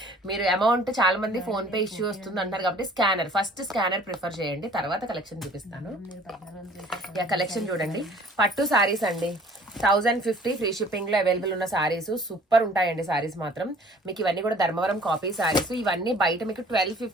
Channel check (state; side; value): normal; both; correlation 0.52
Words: మీరు అమౌంట్ చాలా మంది ఫోన్ పే ఇష్యూ వస్తుంది అంటారు కాబట్టి ఫస్ట్ స్కానర్ ప్రిఫర్ చేయండి, తర్వాత కలెక్షన్ చూపిస్తాను. కలెక్షన్ చూడండి, పట్టు సారీస్ అండి. 1050 ఫ్రీ షిప్పింగ్ లో అవైలబుల్ ఉన్న సారీస్ సూపర్ ఉంటాయండి. సారీస్ మాత్రం మీకు ఇవన్నీ కూడా ధర్మవరం కాపీ సారీస్. ఇవన్నీ బయట మీకు